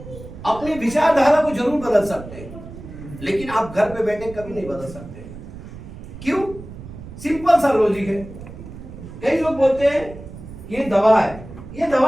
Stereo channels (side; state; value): right; noise; rumble, 14 dB below the sound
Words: अपनी विचारधारा को जरूर बदल सकते हैं, लेकिन आप घर पे बैठे कभी नहीं बदल सकते। क्यों? सिंपल सा लॉजिक है। कई लोग बोलते हैं ये दवा है, ये